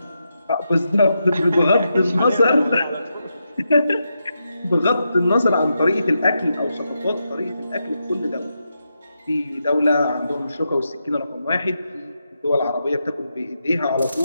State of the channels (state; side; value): inverted; both; correlation -0.85